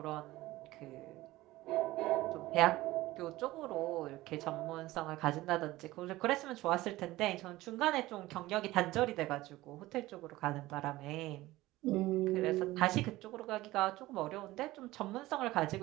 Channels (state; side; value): quieter; left; 17.9 dB